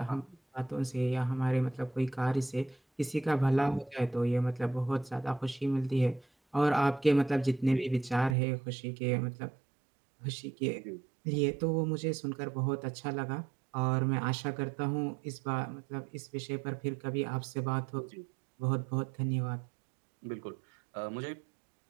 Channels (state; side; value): drops out; left; at 8.3 s